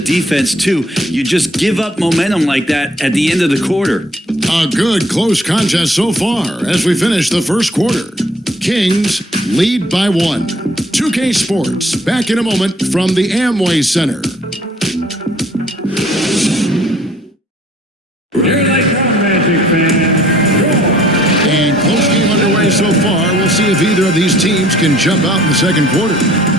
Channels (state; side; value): normal; both; correlation 0.58